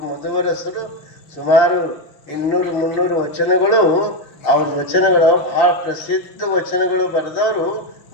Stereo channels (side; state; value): right; late; 6.4 ms